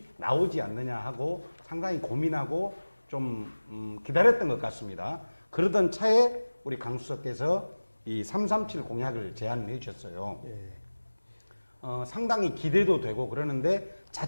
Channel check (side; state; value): both; inverted; correlation -1.00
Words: 나오지 않느냐 하고 상당히 고민하고 좀 기다렸던 것 같습니다. 그러던 차에 우리 강수석께서 이 337 공약을 제안해 주셨어요. 상당히 기대도 되고 그러는데